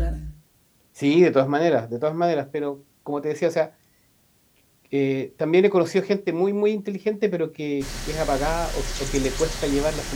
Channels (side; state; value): both; identical; correlation 1.00